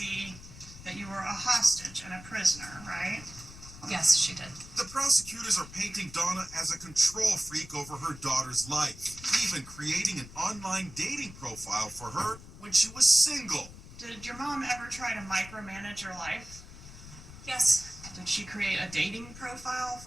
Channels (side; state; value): left; noise; rumble, 16 dB below the sound